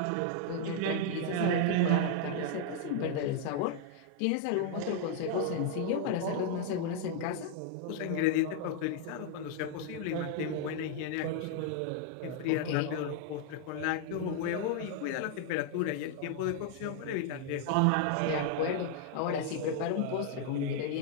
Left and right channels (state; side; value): different; both; correlation 0.00